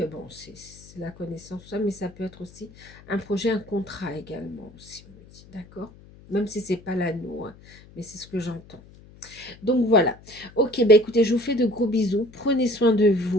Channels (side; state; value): left; noise; hum, 22 dB below the sound